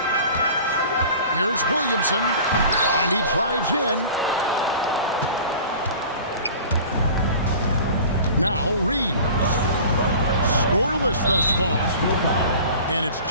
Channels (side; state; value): both; inverted; correlation -0.42